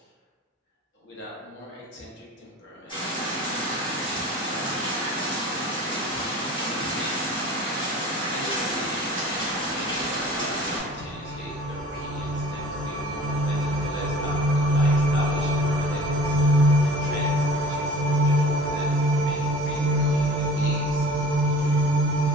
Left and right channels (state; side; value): normal; both; correlation 0.44